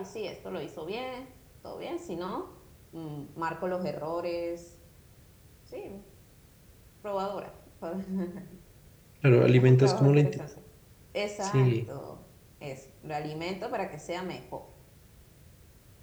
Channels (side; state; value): both; identical; correlation 1.00